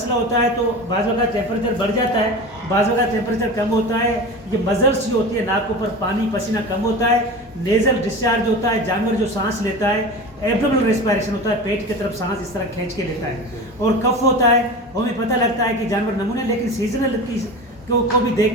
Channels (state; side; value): normal; both; correlation 0.31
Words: होता है तो बाज़ वक़्त टेम्परेचर बढ़ जाता है, बाज़ वक़्त टेम्परेचर कम होता है। ये मजल्स जो होती है, नाक के ऊपर पानी पसीना कम होता है, नेज़ल डिस्चार्ज होता है, जानवर जो सांस लेता है, एब्डोमिनल रेस्पिरेशन होता है, पेट की तरफ सांस इस तरह खींच के लेता है, और कफ होता है। हमें पता लगता है कि जानवर नमूने, लेकिन सीजनल को भी देख